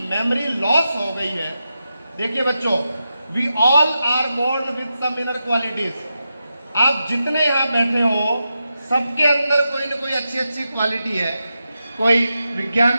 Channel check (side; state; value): both; inverted; correlation -0.89